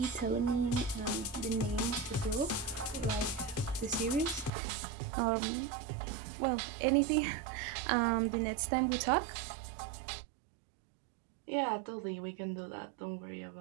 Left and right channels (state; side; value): drops out; left; at 4.5 s